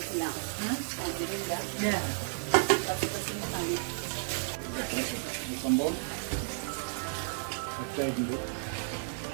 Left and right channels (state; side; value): silent; left; digital silence